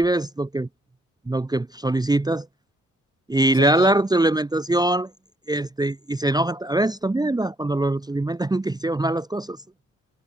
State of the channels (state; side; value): normal; both; correlation 0.68